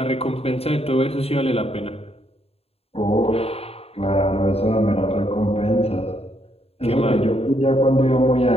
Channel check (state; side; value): late; right; 0.29 ms